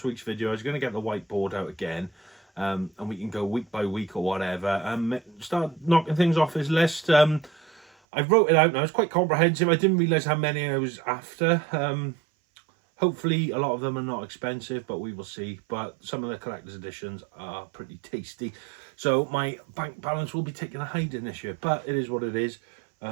week's video. I was going to get the whiteboard out again, and we can go week by week or whatever. Start knocking things off his list. I wrote it out now. It's quite comprehensive. I didn't realise how many I was after. Hopefully a lot of them are not expensive, but we will see. But some of the collector's editions are pretty tasty. So my bank balance will be taking a hiding this year, but it is what it is.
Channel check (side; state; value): left; drops out; at 7.9 s